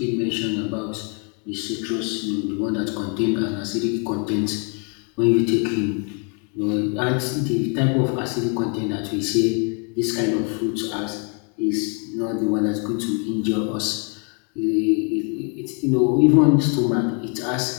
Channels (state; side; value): quieter; right; 38.2 dB